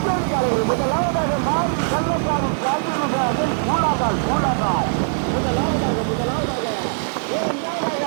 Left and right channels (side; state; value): left; silent; digital silence